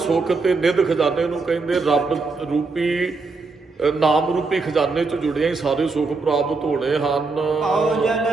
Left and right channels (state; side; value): quieter; left; 4.0 dB